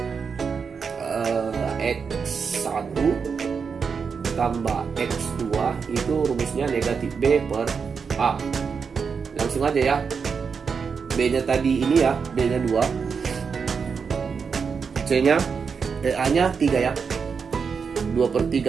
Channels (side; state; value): left; quieter; 5.8 dB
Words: X1 tambah X2 itu rumusnya negatif B per A. Langsung aja ya. B-nya tadi ini ya, B-nya 2. C-nya, A-nya 3 ya. 2 per